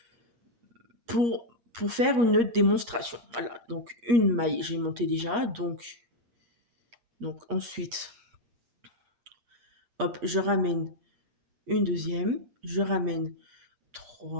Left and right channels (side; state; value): left; late; 8.5 ms